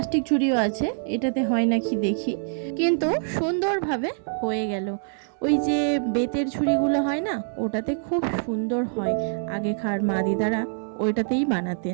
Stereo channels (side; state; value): left; silent; 59 dB below the other